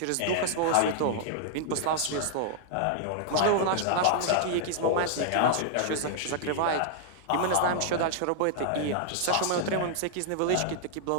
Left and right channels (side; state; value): both; different; correlation -0.01